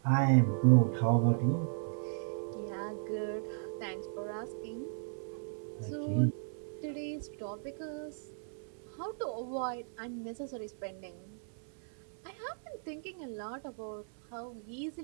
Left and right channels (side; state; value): left; silent; digital silence